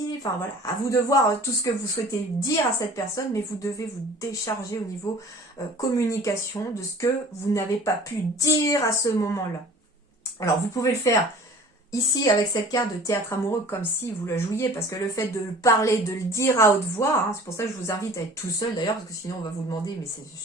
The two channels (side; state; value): both; normal; correlation 0.46